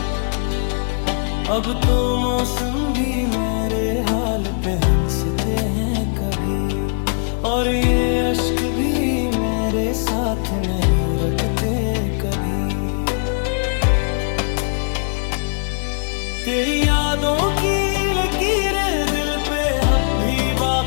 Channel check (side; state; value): right; silent; digital silence